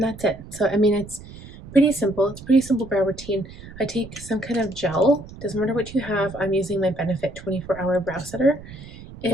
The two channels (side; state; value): right; noise; rumble, 16 dB below the sound